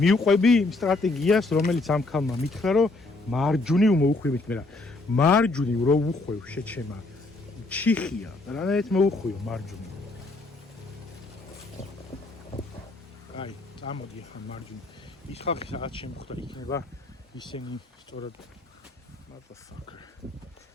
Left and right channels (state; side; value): quieter; right; 3.1 dB